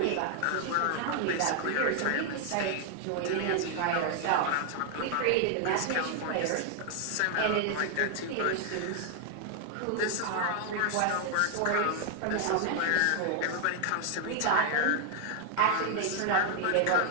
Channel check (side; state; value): both; different; correlation 0.00